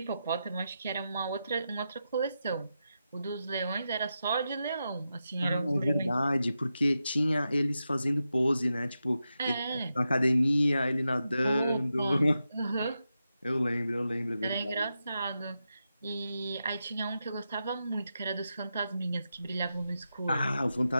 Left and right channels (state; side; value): inverted; both; correlation -0.88